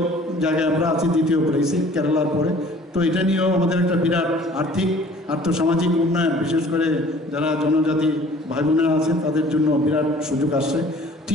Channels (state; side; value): normal; both; correlation 0.51